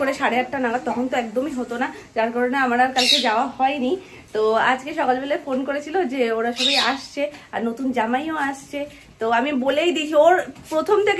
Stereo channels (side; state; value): both; identical; correlation 1.00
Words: 8:30 নাগাদ, তখন তো একদমই হতো না, যার কারণে আমার আর কালকে যাওয়া হয়নি। তো আজকে সকালবেলায় ফোন করেছিল যে ওরা সবাই আসছে আর নতুন জামাইও আসছে। তো আমি বলেই দিয়েছি, ওর প্রথম